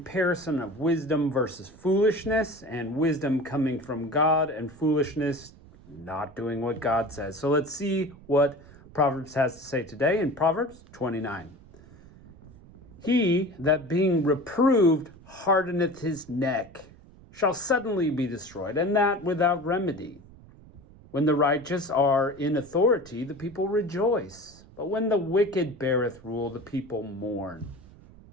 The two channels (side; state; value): right; noise; rumble, 22 dB below the sound